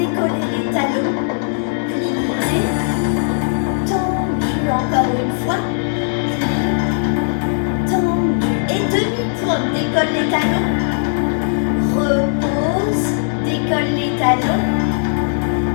les talons. Plier, tendu encore une fois. Tendu et demi-pointe, décolle les talons. Repose, décolle les talons.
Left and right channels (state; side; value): silent; right; 67 dB below the other